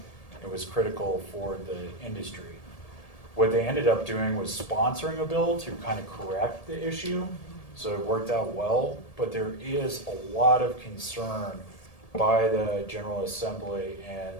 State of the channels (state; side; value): late; right; 1.8 ms